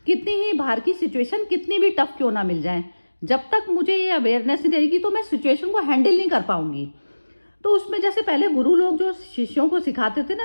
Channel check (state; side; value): inverted; both; correlation -1.00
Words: कितनी ही बाहर की सिचुएशन कितनी भी टफ क्यों ना मिल जाए, जब तक मुझे ये अवेयरनेस नहीं रहेगी तो मैं सिचुएशन को हैंडल नहीं कर पाऊंगी। तो उसमें जैसे पहले गुरु लोग जो शिष्यों को सिखाते थे ना,